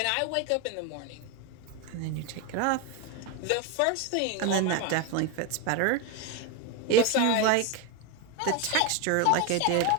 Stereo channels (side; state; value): both; different; correlation 0.02